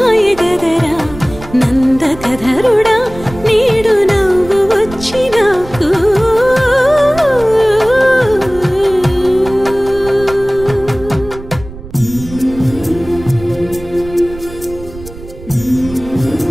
గదరా నందకధరుడా నేడు నవ్వు వచ్చి నాకు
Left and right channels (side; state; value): right; noise; rumble, 15 dB below the sound